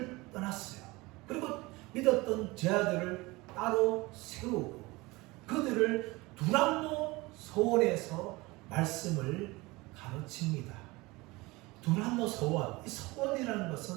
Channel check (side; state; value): left; quieter; 22.5 dB